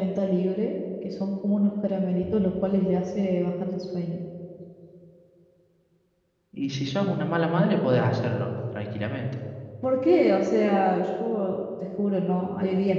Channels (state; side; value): identical; both; correlation 1.00